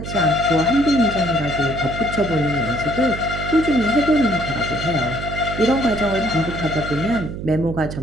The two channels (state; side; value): noise; right; hum, 8 dB below the sound